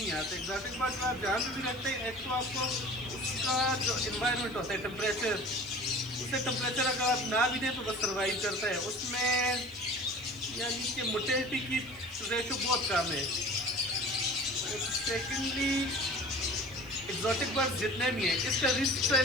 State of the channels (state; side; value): noise; left; hiss, 25 dB below the sound